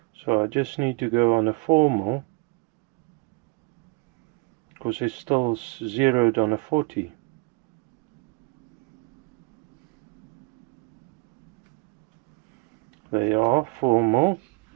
so I just need to go on a 4mm, because it's still zeroed on a 40. They are 4mm.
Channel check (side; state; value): left; quieter; 29.2 dB